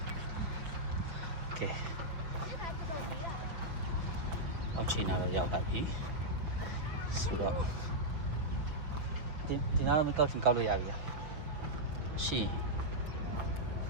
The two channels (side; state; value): left; late; 5.5 ms